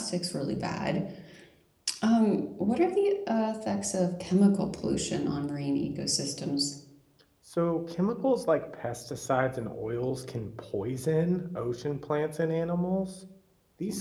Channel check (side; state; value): both; identical; correlation 1.00